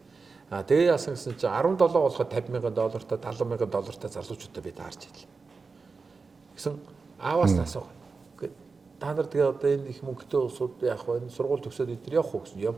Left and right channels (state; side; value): quieter; left; 4.5 dB